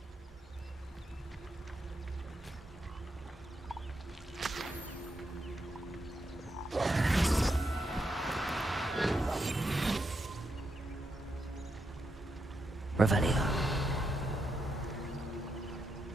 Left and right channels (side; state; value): both; normal; correlation 0.83